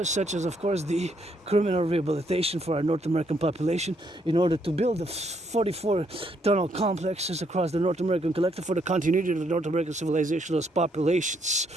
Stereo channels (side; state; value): both; normal; correlation 0.73